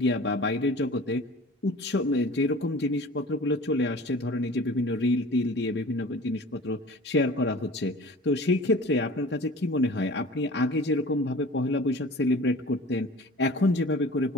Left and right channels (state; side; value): normal; both; correlation 0.42